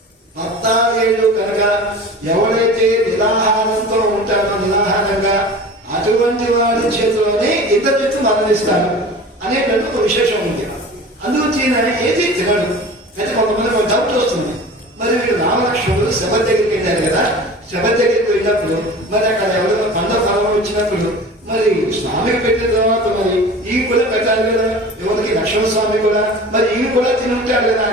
14 కనుక ఎవరైతే నిరాహారంతో ఉంటారో నిరాహారంగా అటువంటి వాడి చేతిలోనే ఇద్దరు చెట్లు మరణిస్తాడు అనేటువంటి ఒక విశేషం ఉంది. అందుకు ఏది తినడు. అయితే కొంతమంది ఒక డౌట్ వస్తుంది. మరి వీడు రామలక్ష్మణుడు శబ దగ్గరికి వెళ్ళారు కదా. శబ దగ్గరికి వెళ్ళినప్పుడు మరి అక్కడ ఎవరైనా పండ ఫలం వచ్చినప్పుడు మరి స్వామికి పెట్టిన తర్వాత మరి ఈ కూడా పెట్టాలి కదా. ఎవరికి లక్ష్మణ స్వామి కూడా మరి ఈ కూడా తిని ఉంటాడు కదా.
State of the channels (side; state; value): both; normal; correlation 0.38